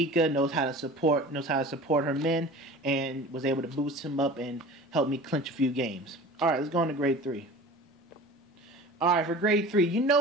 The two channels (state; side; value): normal; both; correlation 0.39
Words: knows how to support her men, and was able to boost him up and help me clinch a few games. All right, let's go on to grade 3. All right, for grade 3, you